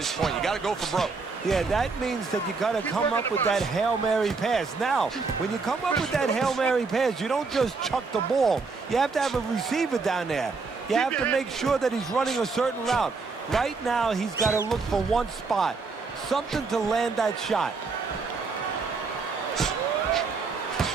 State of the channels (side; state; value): left; quieter; 4.4 dB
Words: point. You got to go for broke. Yeah, that means that you got to come up with that Hail Mary pass. Now, when you come up with that Hail Mary pass, you don't just chuck the ball. You have to have a receiver down there. You have to make sure that he's running a certain route. Right now, he's got to look for one spot, something to land that shot.